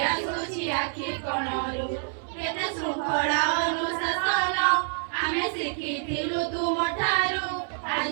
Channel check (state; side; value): silent; left; digital silence